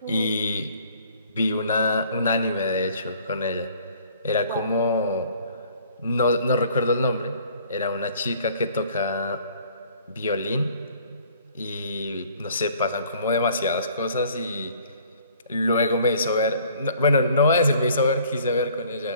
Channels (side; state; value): both; inverted; correlation -0.56